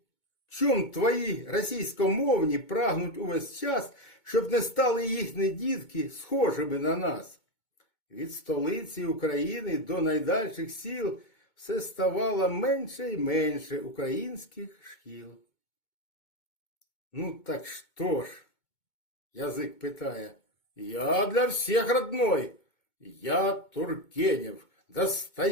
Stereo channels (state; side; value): late; right; 2.2 ms